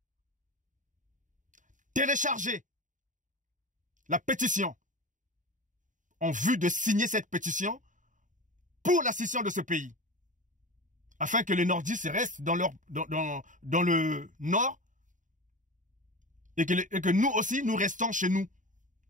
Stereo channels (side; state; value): left; late; 0.37 ms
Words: télécharger la pétition en vue de signer cette pétition pour la scission de ce pays. Afin que les nordistes restent dans le nord et que nous aussi, nous restons chez nous,